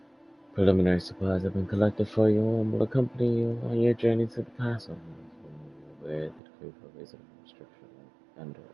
Preliminary supplies have been collected for you and will accompany you on your journey to the castle. Where the decree provides a restriction on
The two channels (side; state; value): left; drops out; at 6.4 s